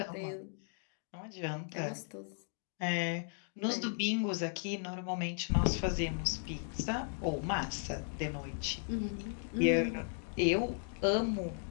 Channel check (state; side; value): silent; right; 54 dB below the other